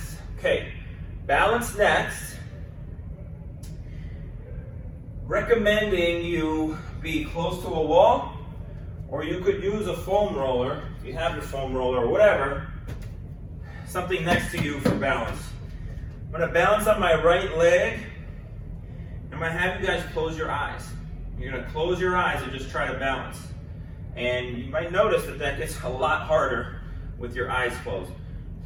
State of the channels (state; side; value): identical; both; correlation 1.00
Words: Okay, balance next. Recommending you be close to a wall, or you could use a foam roller, if you have your foam roller or whatever, something next to you for balance. I'm going to balance on my right leg. I'm going to have you guys close your eyes. You're going to close your eyes and just try to balance. And you might notice that that gets a lot harder with your eyes closed.